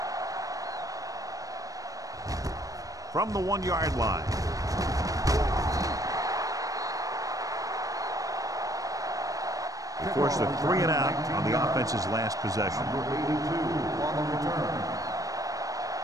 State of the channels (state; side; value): late; left; 0.17 ms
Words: From the 1-yard line. They forced a 3 and out on the offense's last possession. Number 82 on the return.